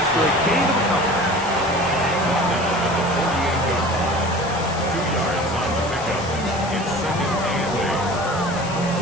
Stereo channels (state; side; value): noise; left; hiss, 14 dB below the sound